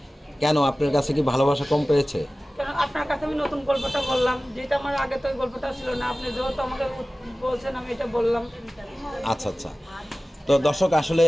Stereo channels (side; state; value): both; normal; correlation 0.97